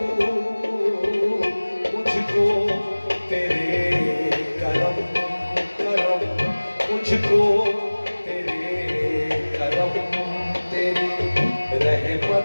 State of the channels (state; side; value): inverted; both; correlation -1.00